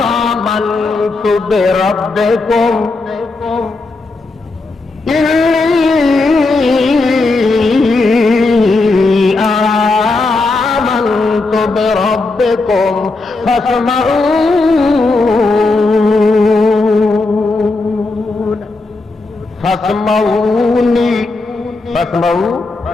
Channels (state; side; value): quieter; right; 3.4 dB